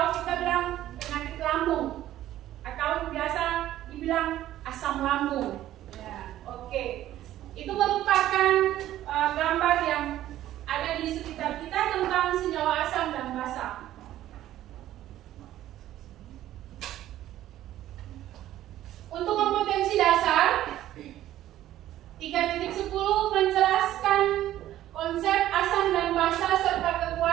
kita bilang penyakit lambung, atau biasa dibilang asam lambung. Oke, itu merupakan gambar yang ada di sekitar kita tentang senyawa asam dan basa. Untuk kompetensi dasar 3.10 menjelaskan konsep asam dan basa serta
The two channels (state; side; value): quieter; left; 13.3 dB